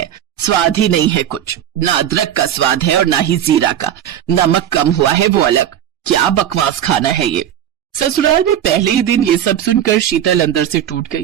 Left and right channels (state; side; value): quieter; left; 10.5 dB